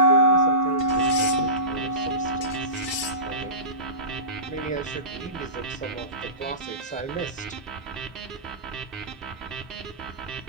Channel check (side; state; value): right; late; 1.7 ms